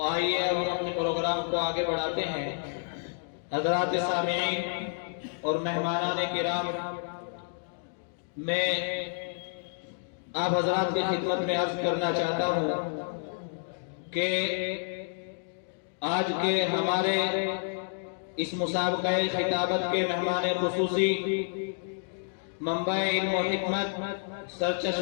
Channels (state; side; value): silent; right; digital silence